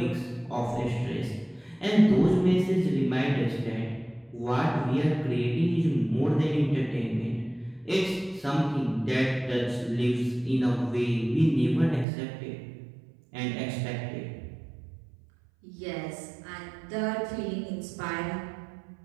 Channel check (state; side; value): drops out; left; at 12.1 s